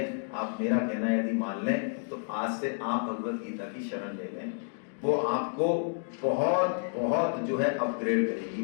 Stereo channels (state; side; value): silent; right; digital silence